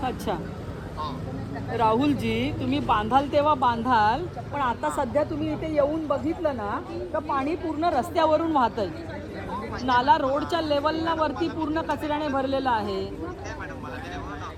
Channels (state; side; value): identical; both; correlation 1.00